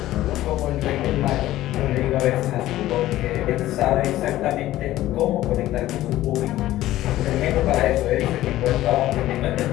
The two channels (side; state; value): right; quieter; 14.9 dB